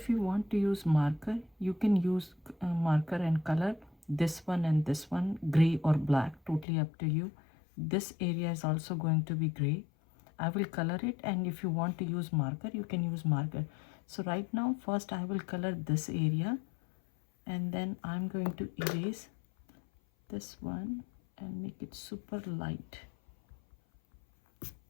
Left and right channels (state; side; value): drops out; right; at 6.7 s